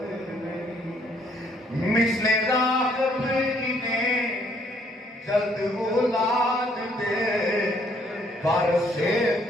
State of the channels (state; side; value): normal; both; correlation 0.66